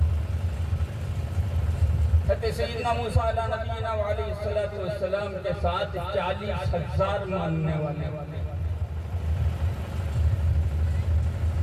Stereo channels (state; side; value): identical; both; correlation 1.00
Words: सैयदना मूसा नबीना अलैहिस्सलाम के साथ 40,000 मानने वाले,